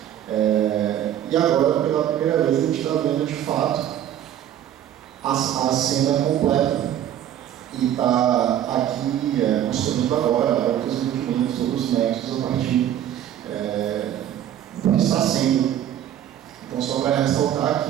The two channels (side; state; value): left; quieter; 11.0 dB